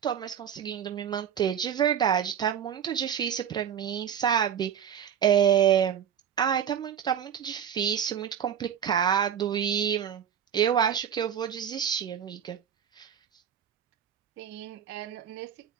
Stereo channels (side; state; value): left; quieter; 8.8 dB